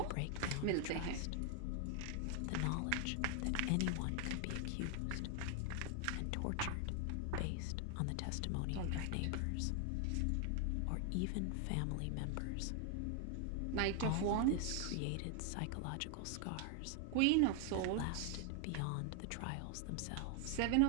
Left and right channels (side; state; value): both; different; correlation 0.00